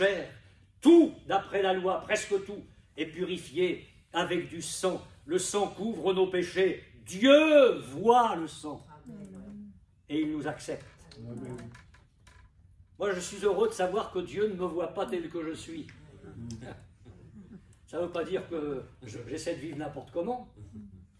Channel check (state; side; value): identical; both; correlation 1.00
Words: Tout, d'après la loi, presque tout, est purifié avec du sang. Le sang couvre nos péchés. Dieu voit le sang et il nous accepte. Amen. Moi, je suis heureux de savoir que Dieu ne me voit pas tel que je suis. Ça ne veut pas dire que j'essaie de vivre n'importe comment,